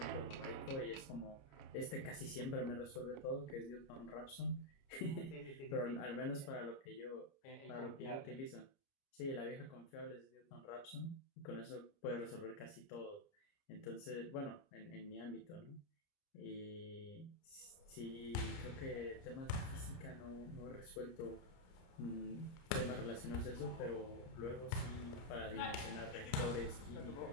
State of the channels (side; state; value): right; late; 29 ms